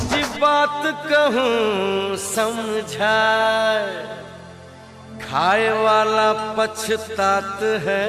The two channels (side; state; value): both; identical; correlation 1.00